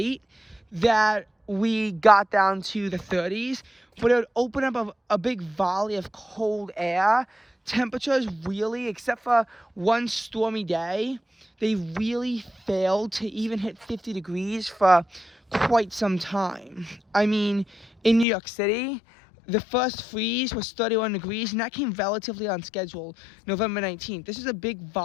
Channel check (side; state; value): right; drops out; at 18.2 s